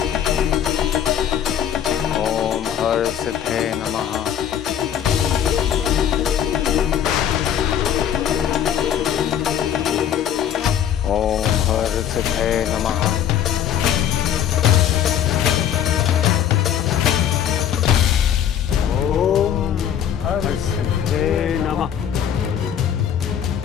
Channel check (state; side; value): quieter; right; 9.6 dB